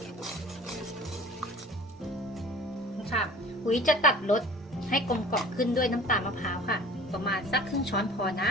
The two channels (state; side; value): normal; both; correlation 0.45